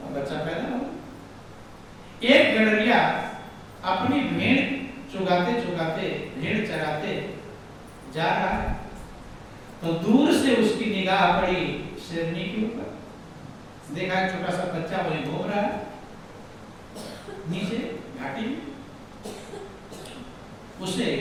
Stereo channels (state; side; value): identical; both; correlation 1.00